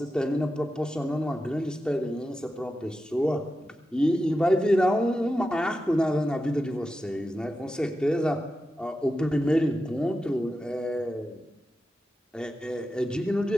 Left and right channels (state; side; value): normal; both; correlation 0.91